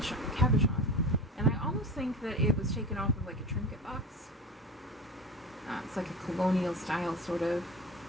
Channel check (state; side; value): normal; both; correlation 0.32